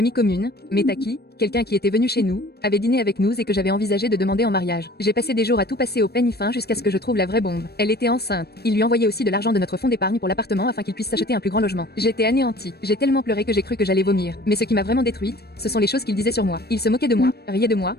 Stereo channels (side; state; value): right; late; 0.47 ms